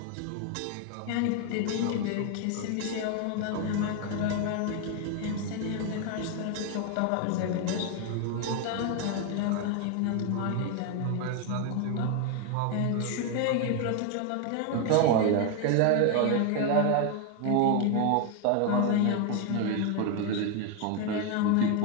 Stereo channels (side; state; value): both; different; correlation 0.01